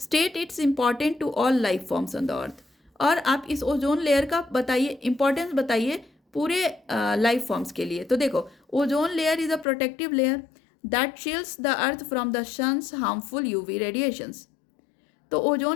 its important to all life forms on the earth. और आप इस ओजोन लेयर का बताइए इंपॉर्टेंस, बताइए पूरे लाइफ फॉर्म्स के लिए। तो देखो, ozone layer is a protective layer that shields the earth from the sun's harmful UV radiations. तो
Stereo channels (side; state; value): right; drops out; at 9.7 s